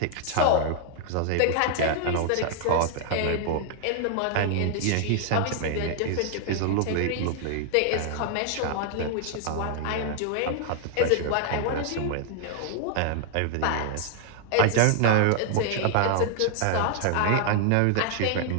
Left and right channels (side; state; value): both; different; correlation 0.00